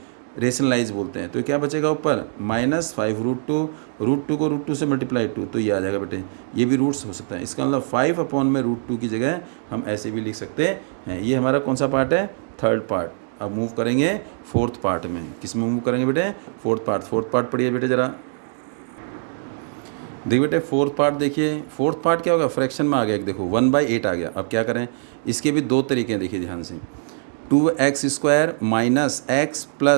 रेशनलाइज बोलते हैं। तो क्या बचेगा ऊपर -5√2, √2 को √2 से मल्टीप्लाई 2, तो ये आ जाएगा बेटे। ये भी रूट्स हो सकता है, इसका मतलब 5/√2 की जगह हम ऐसे भी लिख सकते हैं। ये हमारा कौन सा पार्ट है? Third part. अब मूव करेंगे फोर्थ पार्ट में। किस में मूव करेंगे बेटे? Fourth part. फोर्थ पार्ट पढ़िए बेटे ज़रा। देखिए बेटे फोर्थ पार्ट देखिए, फोर्थ पार्ट क्या होगा? फ्रैक्शन में आ गया एक, देखो 1/8 आ गया। अब क्या करें? इसके भी दो तरीके हैं, देखिए ध्यान से। 2x² minus x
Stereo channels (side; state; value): left; silent; digital silence